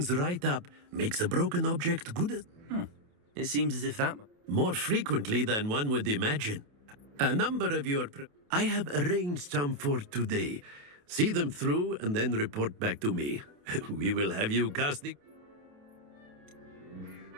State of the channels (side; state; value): left; late; 28 ms